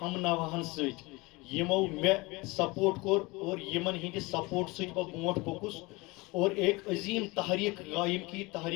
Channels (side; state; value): right; quieter; 24.0 dB